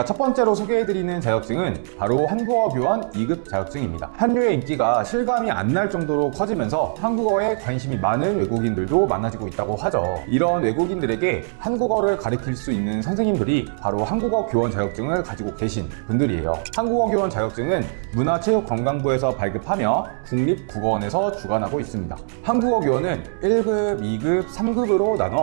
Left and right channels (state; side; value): silent; left; digital silence